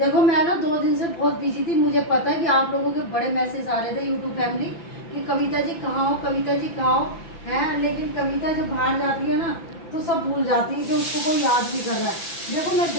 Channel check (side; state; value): right; late; 5.9 ms